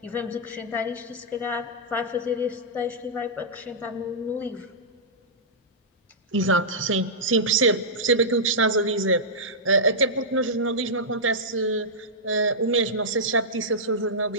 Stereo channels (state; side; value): normal; both; correlation -0.13